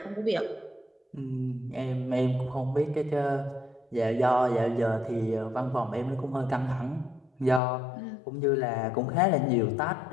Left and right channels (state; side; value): drops out; right; at 7.6 s